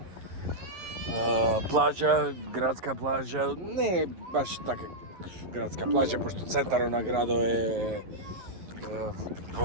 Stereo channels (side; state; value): left; late; 11 ms